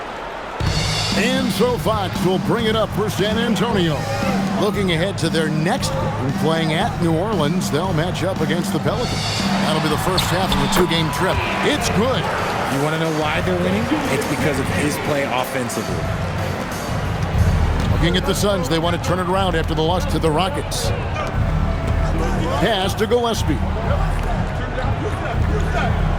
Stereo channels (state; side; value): identical; both; correlation 1.00